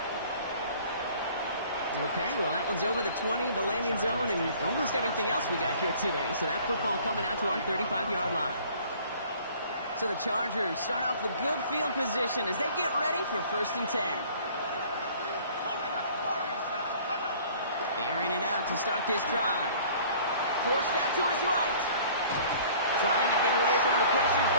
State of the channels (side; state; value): both; inverted; correlation -0.52